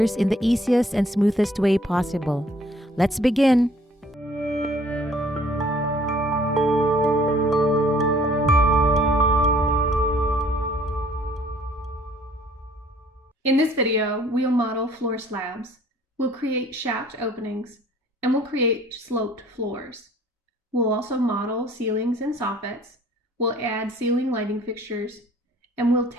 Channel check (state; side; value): normal; both; correlation 0.57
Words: in the easiest and smoothest way possible. Let's begin! In this video, we'll model floor slabs, we'll create shaft openings, and we'll create sloped floors. We'll also model ceilings and soffits, we'll add ceiling lighting fixtures, and we'll